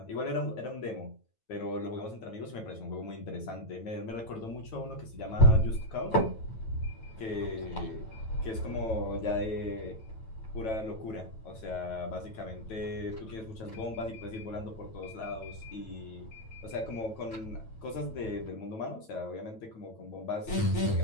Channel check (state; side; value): late; right; 9.1 ms